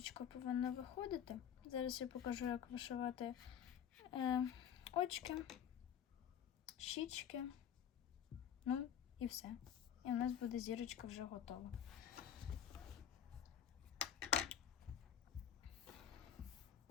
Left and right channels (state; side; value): quieter; right; 9.4 dB